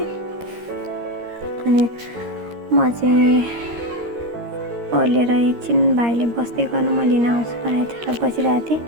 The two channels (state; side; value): late; left; 13 ms